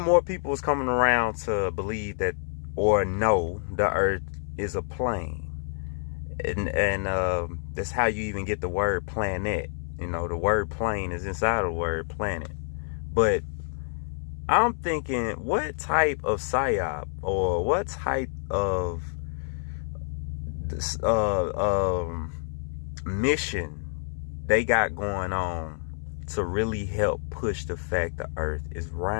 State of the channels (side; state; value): right; silent; 60 dB below the other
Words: more people was coming around to believe that, or know, the earth is a plane. And that's how you even get the word planet. The word plane is inside of the word planet. But I'm thinking, what type of psyop, or what type of mission they got going on to really help push the fact the earth is